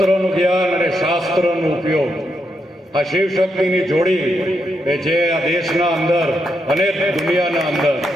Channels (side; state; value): both; normal; correlation 0.82